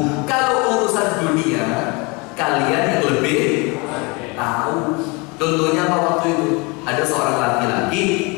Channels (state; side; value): quieter; right; 28.2 dB